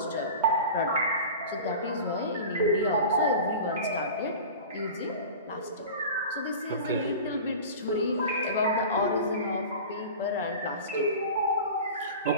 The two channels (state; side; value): inverted; both; correlation -0.35